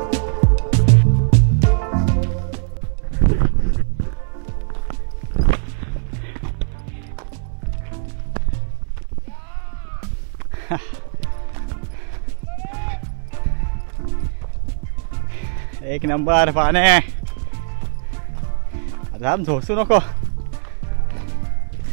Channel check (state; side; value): silent; left; 61 dB below the other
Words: एक नंबर पाने. आराम झोसू नको.